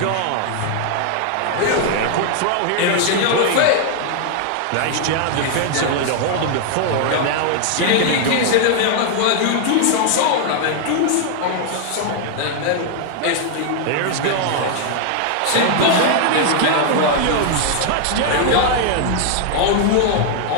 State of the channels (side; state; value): both; different; correlation 0.00